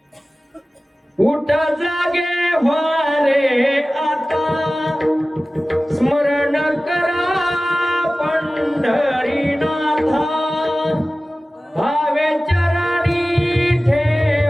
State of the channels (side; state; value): both; normal; correlation 0.96